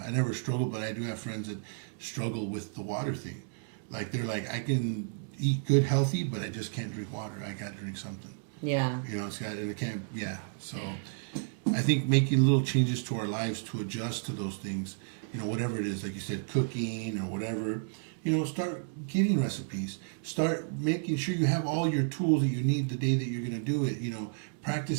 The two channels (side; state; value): left; silent; digital silence